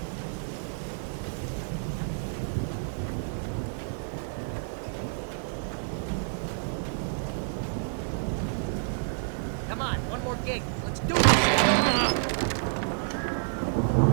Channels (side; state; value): left; silent; digital silence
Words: Come on, one more gate. Let's do this.